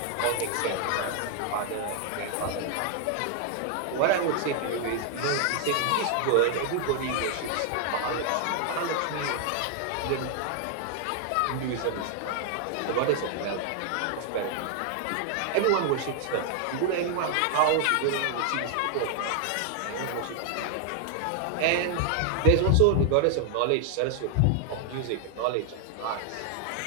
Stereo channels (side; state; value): both; different; correlation 0.00